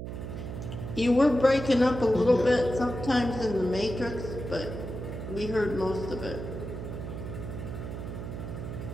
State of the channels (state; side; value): noise; right; hum, 7 dB below the sound